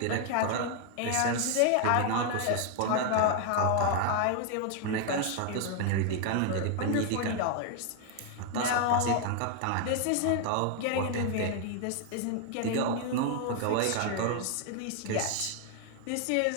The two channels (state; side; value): different; both; correlation 0.00